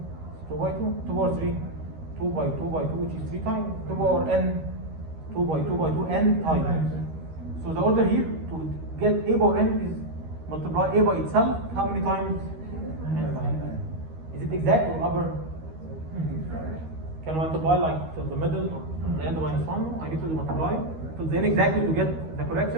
2 by 2? 2 power 3? 2 by 2 by 2, which is 3 times. 2 power n, 2 by 2 by 2, n times. So the order here to get A power n is multiply A by itself. How many times? N times. Is it exact or upper? Can I multiply like to the middle or the end of minus 1? I need to multiply to the n exactly to get the correct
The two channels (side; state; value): left; late; 13 ms